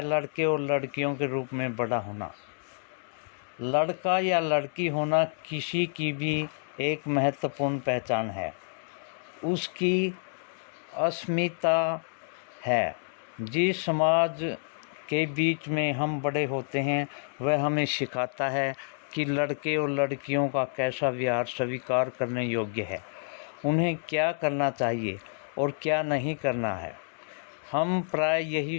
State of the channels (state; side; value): silent; right; digital silence